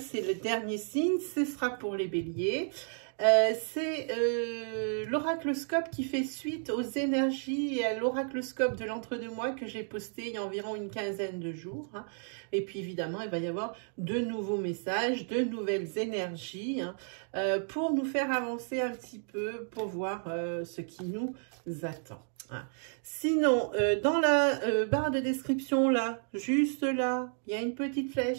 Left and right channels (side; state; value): left; silent; 56 dB below the other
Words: le dernier signe, ce sera pour les béliers. C'est l'oracloscope qui fait suite aux énergies et à l'oracloscope de l'entre-deux-mois que j'ai posté il y a environ une quinzaine de jours. Hein. Et puis évidemment, il va y avoir de nouveaux messages, de nouvelles énergies hein, pour nous faire avancer un petit peu, pour voir ce qui nous attend. Hein. Sinon, dans la barre de description, là, juste là, il y a une petite